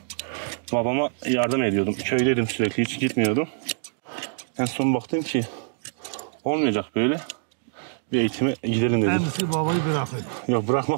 babama yardım ediyordum. Köydeydim sürekli, hiç gitmiyordum. En son baktım ki olmayacak böyle. Bir eğitime gidelim dedim. Kendisi babayı bırakıyor. Yok,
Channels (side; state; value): left; silent; digital silence